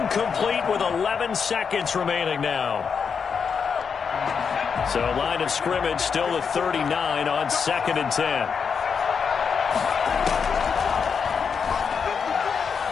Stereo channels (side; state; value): right; quieter; 6.2 dB